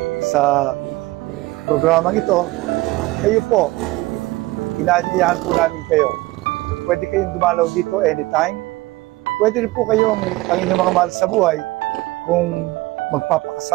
sa programang ito, kayo po, inaanyayahan po namin kayo. Pwede kayong dumalaw dito anytime. Pwede rin po kayong, ang inyong mga mahal sa buhay, kung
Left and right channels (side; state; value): left; quieter; 20.0 dB